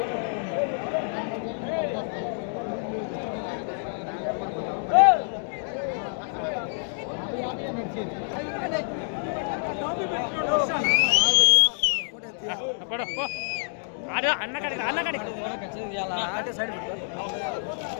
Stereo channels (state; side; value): silent; right; 60 dB below the other